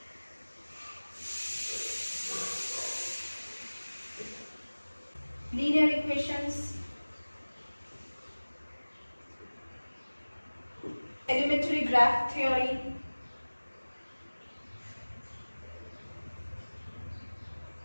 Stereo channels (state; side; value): inverted; both; correlation -1.00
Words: linear equations, elementary graph theory,